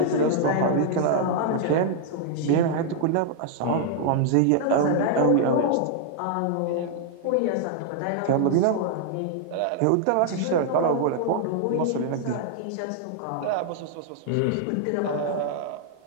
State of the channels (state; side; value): different; both; correlation 0.00